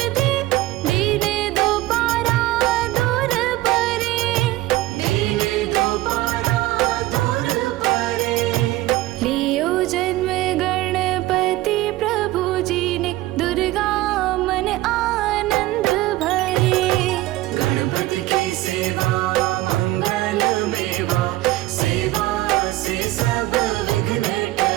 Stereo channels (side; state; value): left; quieter; 17.1 dB